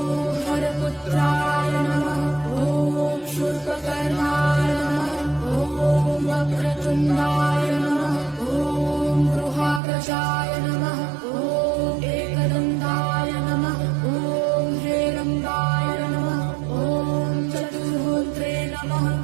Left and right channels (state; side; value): drops out; left; at 9.8 s